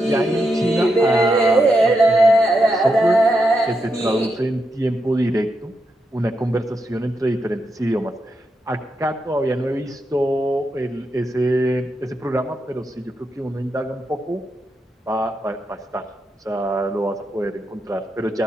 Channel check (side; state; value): both; normal; correlation 0.84